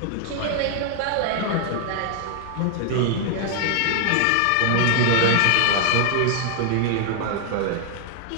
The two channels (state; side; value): different; both; correlation 0.00